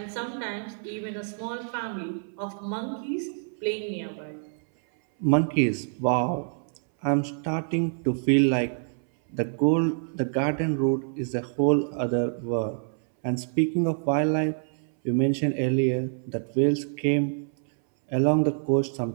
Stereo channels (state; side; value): silent; left; 60 dB below the other